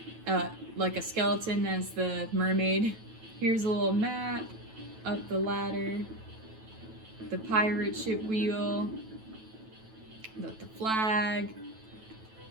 like a skeleton as the mermaid. Here's a little map, up the ladder, the pirate ship wheel, with the flag.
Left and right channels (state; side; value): late; left; 9.1 ms